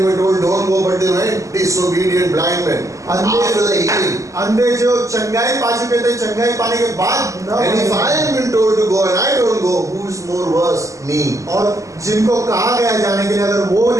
were told don't go, but they went. Disobedient blind men. After the healing. अंधे जो चंगाई पा चुके थे, चंगाई पाने के बाद न And if I am been told to go and I don't go, who is more worse? Me. और जिनको कहा गया जाने के लिए अगर वो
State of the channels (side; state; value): left; late; 0.16 ms